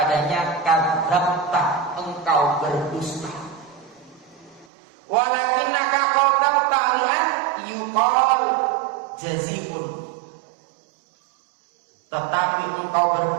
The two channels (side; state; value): left; drops out; at 4.7 s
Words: kadzabta, engkau berdusta. Walakinnaka qatalta li'an yuqal jaziun. Tetapi engkau